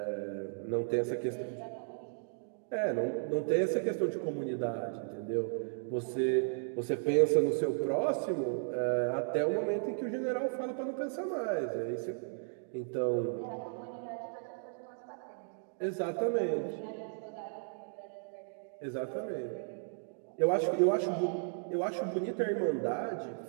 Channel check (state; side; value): silent; left; digital silence